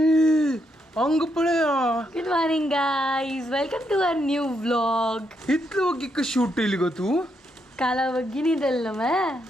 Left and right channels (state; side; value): normal; both; correlation 0.79